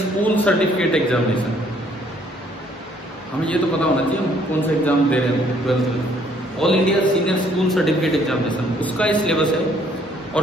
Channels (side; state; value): both; normal; correlation 0.64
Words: certificate examination. हमें ये तो पता होना चाहिए हम कौन सा एग्जाम दे रहे हैं 12th में। All India senior school certificate examination, उसका ये सिलेबस है। और